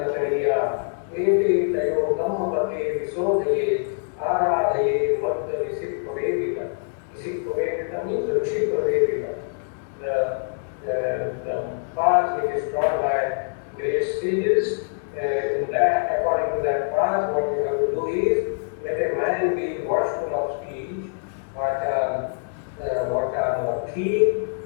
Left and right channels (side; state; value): right; silent; digital silence